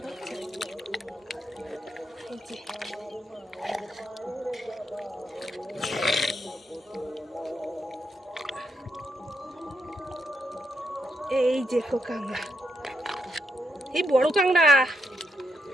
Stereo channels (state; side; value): normal; both; correlation 0.80